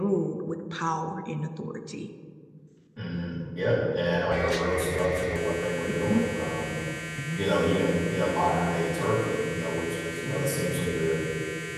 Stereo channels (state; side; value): identical; both; correlation 1.00